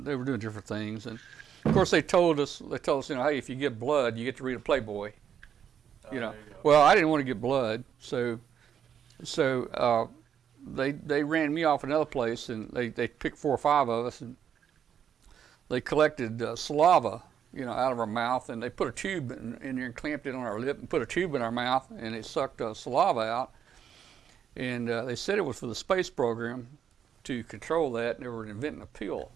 they were doing different things. And of course, they told us, hey, if you get blood, you get to read a Playboy. Well, I didn't want to get blood, so they ran me off another place, and they picked 4 or 5 of us, and they collected saliva, out of our mouth, and they put a tube in there and clamped it on our lip and put a tube in our mouth, and they sucked saliva out. And they said it was for the space program to control that, and they were inventing a pill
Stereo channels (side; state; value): left; quieter; 8.5 dB